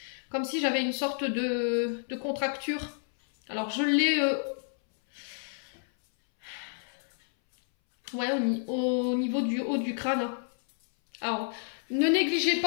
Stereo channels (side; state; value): right; silent; 58 dB below the other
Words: comme si j'avais une sorte de contracture. Alors je l'ai au niveau du haut du crâne. Alors ne négligez